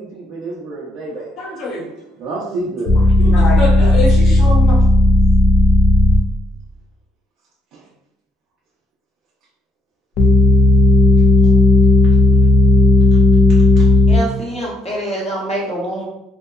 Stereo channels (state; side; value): normal; both; correlation 0.78